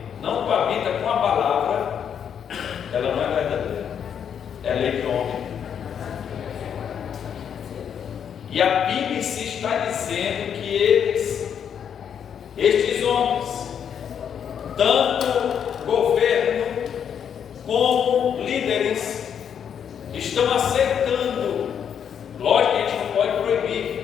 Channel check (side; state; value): right; quieter; 8.2 dB